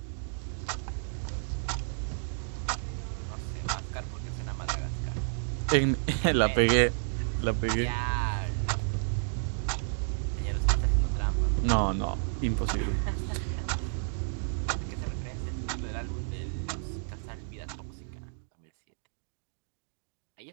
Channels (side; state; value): left; silent; digital silence